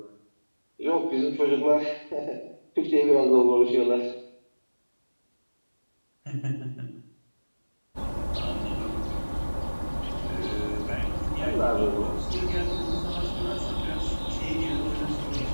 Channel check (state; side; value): inverted; both; correlation -1.00